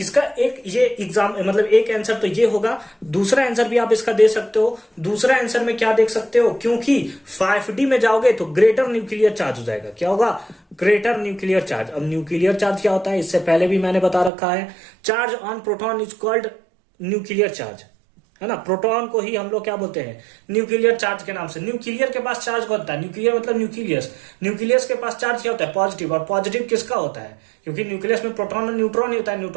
एक ये एग्जाम मतलब एक आंसर तो ये होगा, दूसरा आंसर भी आप इसका दे सकते हो। दूसरा आंसर में क्या देख सकते हो, क्योंकि 5D में जाओगे तो ग्रेटर न्यूक्लियर चार्ज हो जाएगा, क्या होगा, ग्रेटर न्यूक्लियर चार्ज। अब न्यूक्लियर चार्ज क्या होता है, इससे पहले भी मैंने बता रखा है, charge on proton is called nuclear charge, है ना। प्रोटॉन को ही हम लोग क्या बोलते हैं, न्यूक्लियर चार्ज के नाम से। न्यूक्लियर के पास चार्ज कौन होता है, न्यूक्लियर मतलब न्यूक्लियस के पास चार्ज क्या होता है, पॉजिटिव, और पॉजिटिव किसका होता है, क्योंकि न्यूक्लियस में प्रोटॉन और न्यूट्रॉन ही होता है,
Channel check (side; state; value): left; drops out; at 14.3 s